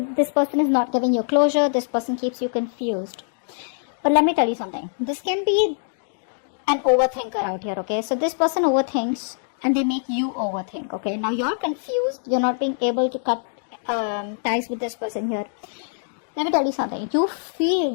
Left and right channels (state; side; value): silent; right; digital silence